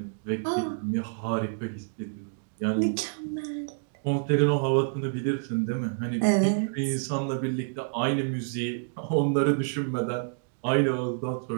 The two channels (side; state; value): left; silent; digital silence